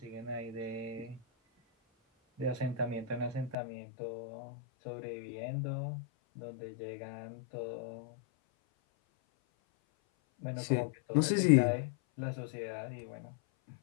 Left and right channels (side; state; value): right; drops out; at 3.6 s